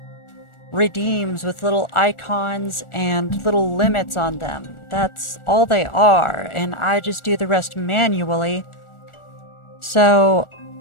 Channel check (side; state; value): right; late; 1.4 ms